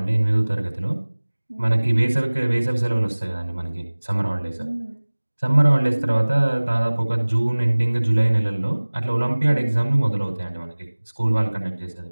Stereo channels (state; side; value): inverted; both; correlation -1.00